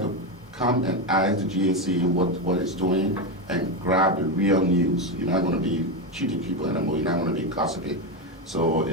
to come and ask the GSC what it's doing and grab the real news. You're not going to be cheating people anymore. You're not going to be gossiping. So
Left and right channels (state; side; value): normal; both; correlation 0.11